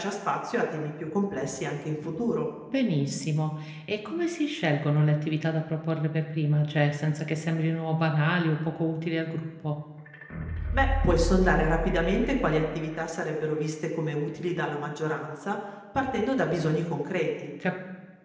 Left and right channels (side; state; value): both; identical; correlation 1.00